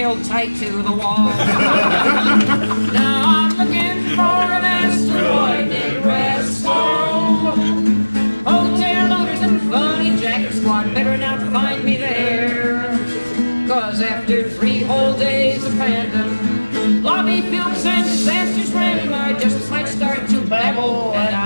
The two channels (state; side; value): inverted; both; correlation -1.00